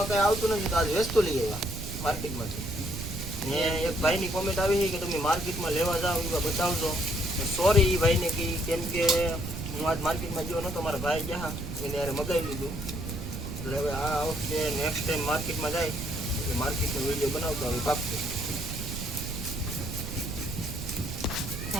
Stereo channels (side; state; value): right; noise; rumble, 6 dB below the sound